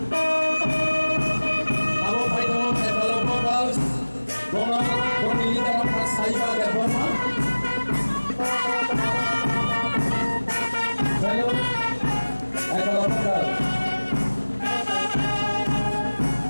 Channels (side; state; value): both; inverted; correlation -1.00